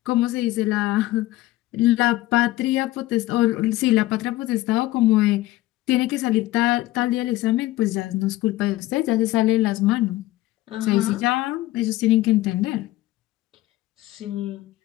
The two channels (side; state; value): right; quieter; 16.9 dB